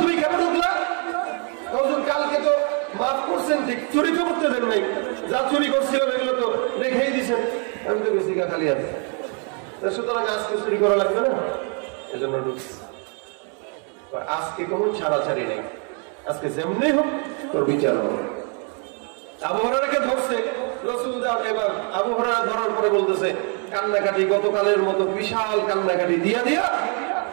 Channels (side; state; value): left; quieter; 38.8 dB